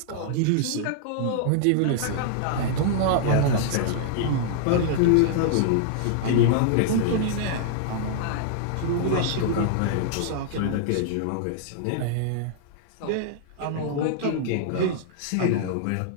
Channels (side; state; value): both; different; correlation -0.01